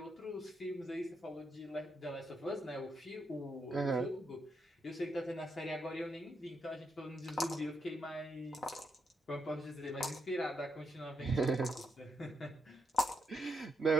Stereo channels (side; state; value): both; normal; correlation 0.80